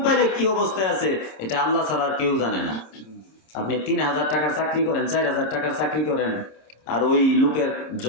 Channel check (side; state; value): right; late; 27 ms